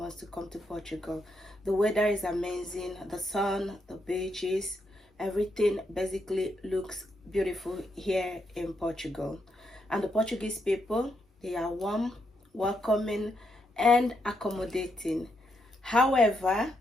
to come to Portugal. The weather is amazing, the sun, the beaches, everything basically looks beautiful here in Portugal. And the Portuguese people, they are warm, welcoming, and accommodating. However,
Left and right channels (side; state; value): both; normal; correlation 0.80